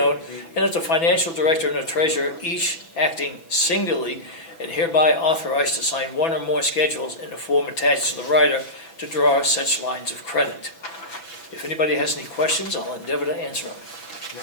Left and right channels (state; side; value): late; right; 6.0 ms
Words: and that the financial director and the treasurer, each acting singularly, and hereby authorized to sign one or more schedules in the form attached to the rider to draw such lines of credit. If anybody has any questions, I'll endeavor to answer them.